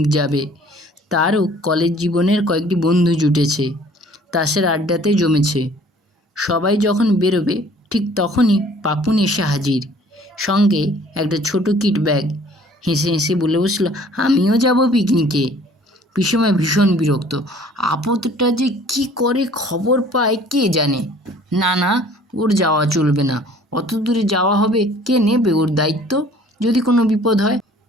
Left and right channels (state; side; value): normal; both; correlation 0.54